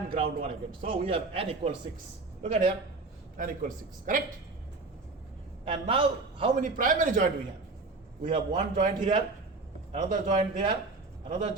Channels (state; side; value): quieter; left; 3.6 dB